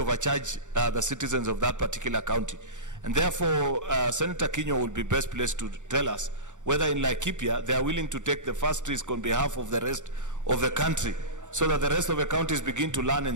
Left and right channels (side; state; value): left; late; 0.85 ms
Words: the citizens of that particular county. And therefore, Senator Kinyua will be best placed to tell us whether in Laikipia they are willing to take the first risk on behalf of the rest of the country, so that the rest of the counties begin to learn